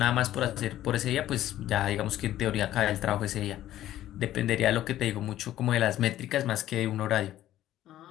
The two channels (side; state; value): right; quieter; 13.3 dB